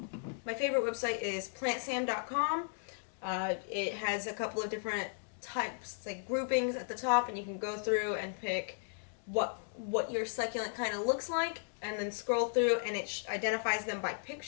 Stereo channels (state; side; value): silent; right; digital silence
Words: favorite website is plantsam.com. It has a couple of different types, like groupings at the top, and you can go through and pick what your succulent kind of looks like, and then scroll through, and it identifies them by